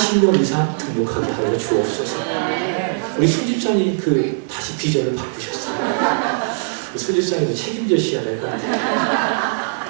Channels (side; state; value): left; silent; digital silence